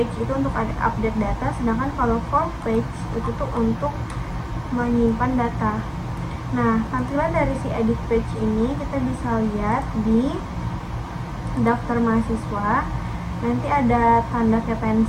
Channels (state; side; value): identical; both; correlation 1.00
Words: itu untuk update data, sedangkan kalau form page itu tuh untuk menyimpan data. Nah, tampilan dari si edit page ini kita bisa lihat di daftar mahasiswa. Nanti ada tanda kayak